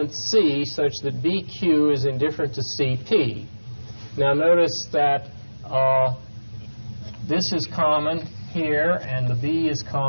C such that BQ is indifferent to CP. Now notice that this is common here, and the B is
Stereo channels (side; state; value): both; inverted; correlation -1.00